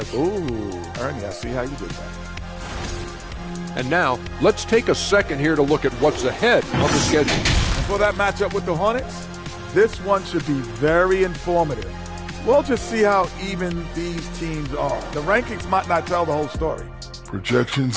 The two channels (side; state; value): both; identical; correlation 1.00